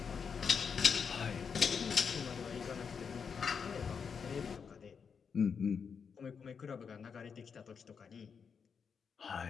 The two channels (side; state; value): right; quieter; 6.3 dB